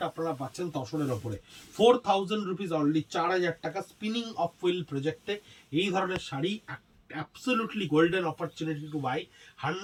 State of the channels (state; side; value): identical; both; correlation 1.00